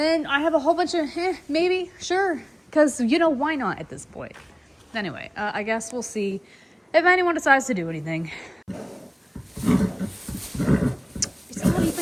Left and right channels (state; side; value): identical; both; correlation 1.00